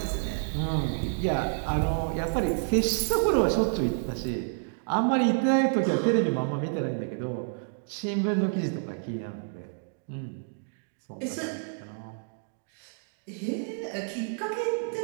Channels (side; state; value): left; silent; digital silence